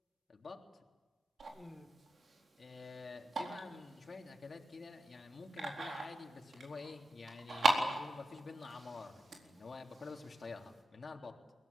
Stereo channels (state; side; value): normal; both; correlation 0.90